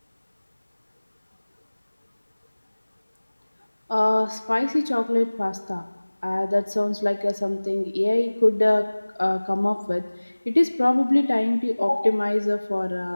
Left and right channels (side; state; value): both; inverted; correlation -1.00